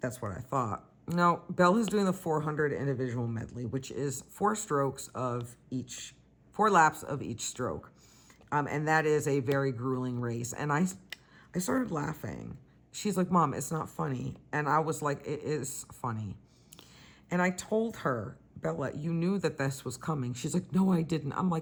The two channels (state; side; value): identical; both; correlation 1.00